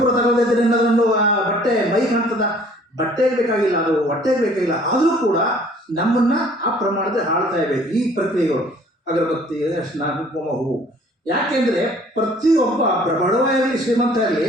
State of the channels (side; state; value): both; normal; correlation 0.55